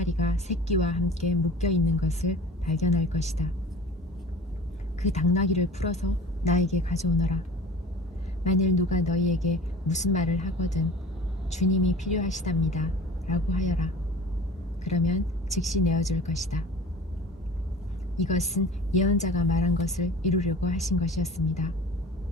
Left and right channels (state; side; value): normal; both; correlation 0.41